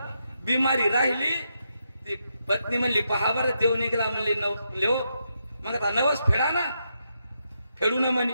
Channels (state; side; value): inverted; both; correlation -0.82